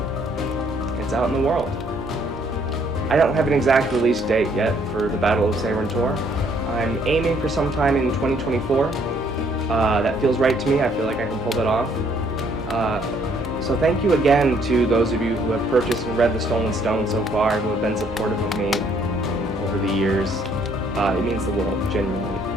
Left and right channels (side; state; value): both; normal; correlation 0.65